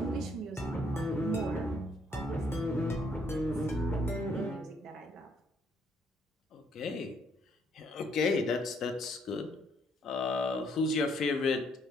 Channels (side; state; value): both; normal; correlation 0.69